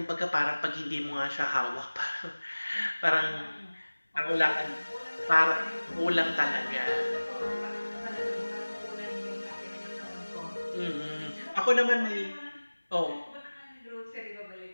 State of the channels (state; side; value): inverted; both; correlation -1.00